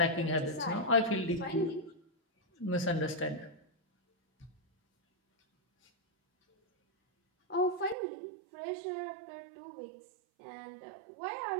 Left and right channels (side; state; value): left; drops out; at 8.0 s